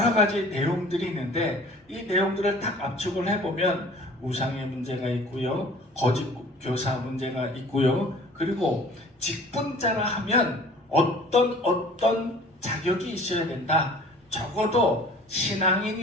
가지 내용들이 있는데 이 내용들을 딱 압축을 해보면 우상의 문제가 있고요, 거짓 교사 문제가 있고요, 그리고 직분자라 하면 어떤 자격이 있어야 된다. 적어도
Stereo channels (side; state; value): both; normal; correlation 0.48